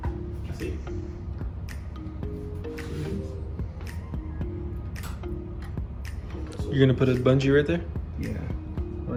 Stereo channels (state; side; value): identical; both; correlation 1.00